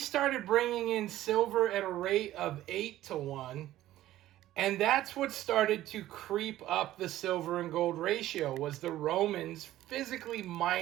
bringing in silver at a rate of 8 to 1. And that's what started to creep up the silver and gold ratio, was the Romans physically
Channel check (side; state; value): left; quieter; 14.3 dB